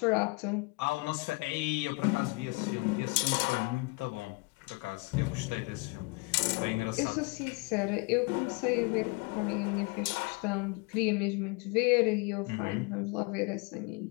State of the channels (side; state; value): right; quieter; 27.2 dB